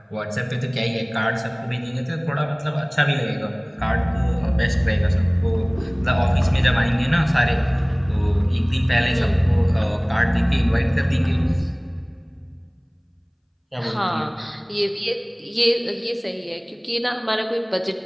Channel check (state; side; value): identical; both; correlation 1.00